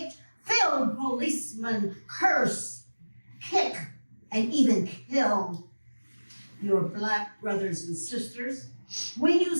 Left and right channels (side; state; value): both; inverted; correlation -1.00